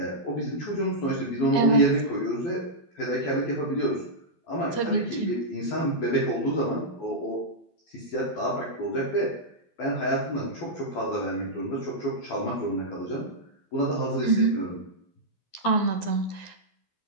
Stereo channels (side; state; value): right; late; 12 ms